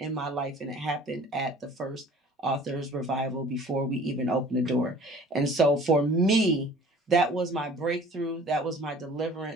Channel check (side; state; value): both; normal; correlation 0.48